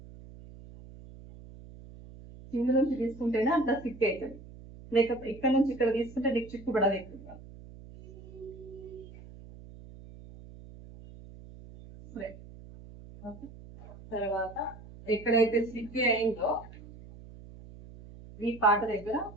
కింద నుంచి తీసుకుంటేనే అంత స్టిక్ అవుతుంది, లేకపోతే ఇక్కడ నుంచి ఇక్కడ తీసుకుంటే నీకు చిక్కు పడదు ఎక్కువ. తర్వాత ఎక్కడైతే స్టిక్ అయిందో ఈ పాట దగ్గర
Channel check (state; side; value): noise; right; hum, 17 dB below the sound